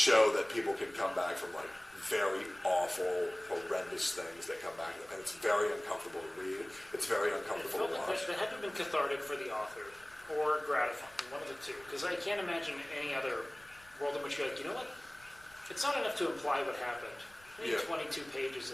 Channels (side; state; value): left; noise; rumble, 26 dB below the sound